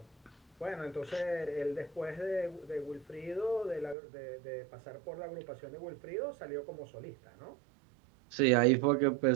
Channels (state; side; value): drops out; left; at 4.0 s